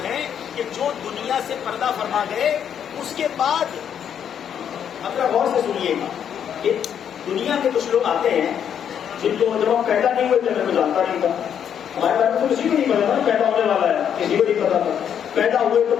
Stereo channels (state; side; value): quieter; right; 8.7 dB